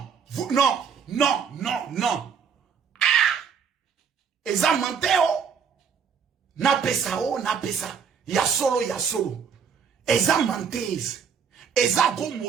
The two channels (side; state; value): left; quieter; 6.7 dB